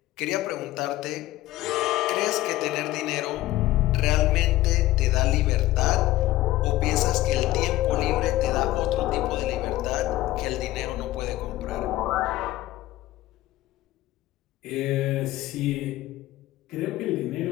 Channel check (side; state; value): right; quieter; 16.1 dB